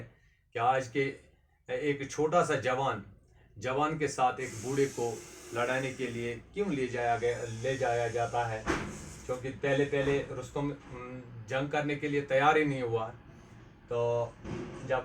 कि आज के एक छोटा सा जवान के साथ एक बूढ़े को लड़ाने के लिए क्यों ले जाया जाता है, क्योंकि पहले पहले रुस्तुम जंग करने के लिए तैयार ही नहीं हुआ। तो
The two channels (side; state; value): both; identical; correlation 1.00